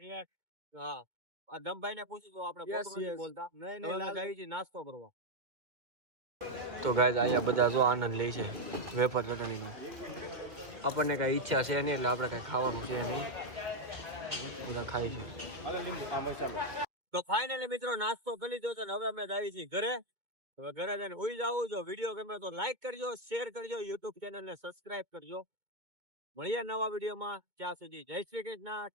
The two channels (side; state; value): left; late; 2.2 ms